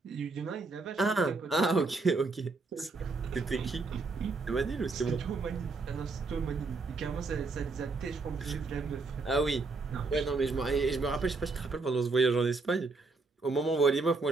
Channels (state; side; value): quieter; left; 3.8 dB